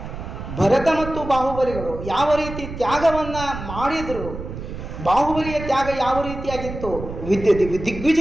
ಭರತ ಮತ್ತು ಬಾಹುಬಲಿಗಳು ಯಾವ ರೀತಿ ತ್ಯಾಗವನ್ನು ಮಾಡಿದರು, ಬಾಹುಬಲಿಯ ತ್ಯಾಗ ಯಾವ ರೀತಿಯಾಗಿತ್ತು,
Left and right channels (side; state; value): right; noise; rumble, 9 dB below the sound